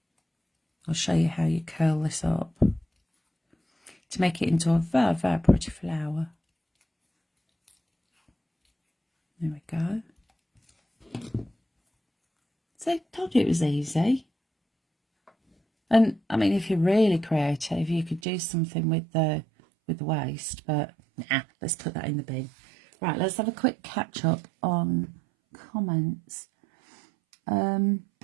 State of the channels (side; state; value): left; drops out; at 18.2 s